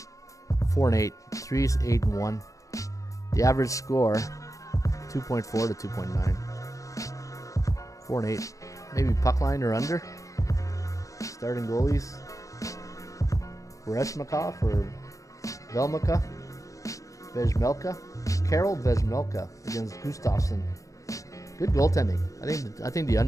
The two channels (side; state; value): right; late; 0.16 ms